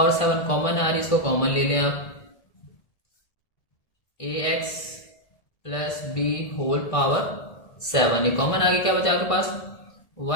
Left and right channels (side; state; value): right; late; 1.5 ms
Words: 7 common आ रही है, इसको कॉमन ले लें आप, ax plus b whole power 7 ये कॉमन आ गया, क्या बचा आपके पास